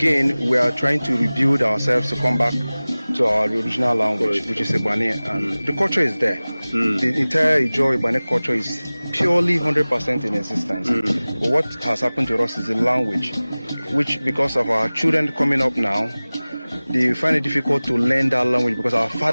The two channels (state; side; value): inverted; both; correlation -0.99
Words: we are trying to rebuild ourselves to come back to our original language, which is Ibane. And the culture is there. The entire Ijaw Ibane culture is purely 100% in existence. But what has happened to us is the language, which because of our children coming up now, they find it difficult to learn that language because our